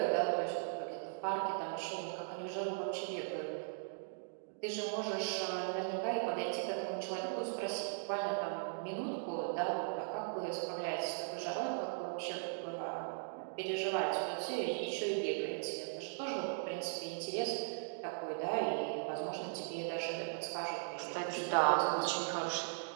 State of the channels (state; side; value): silent; left; digital silence